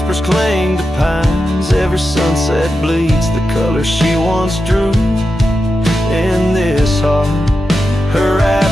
cling to pines. Every sunset bleeds the color she once drew. In this heart, her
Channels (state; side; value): normal; both; correlation 0.89